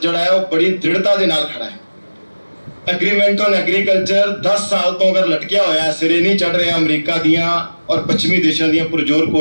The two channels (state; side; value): inverted; both; correlation -1.00